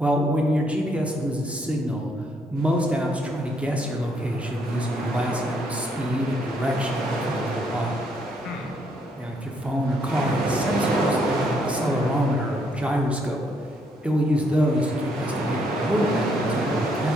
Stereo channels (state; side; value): normal; both; correlation 0.71